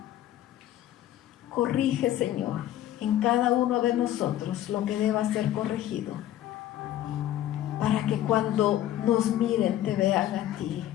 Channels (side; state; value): right; quieter; 12.7 dB